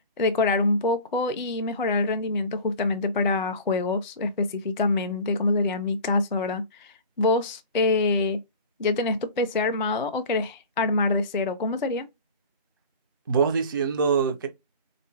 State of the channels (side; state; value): both; inverted; correlation -0.37